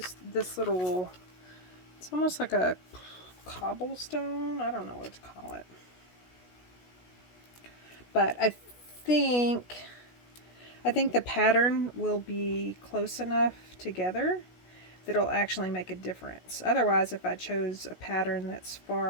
this little, it's almost like a cobblestone. I don't know what to call it. But I think the pattern will be close enough together that it'll actually make a difference. Otherwise, if I chose a pattern that's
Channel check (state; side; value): late; right; 16 ms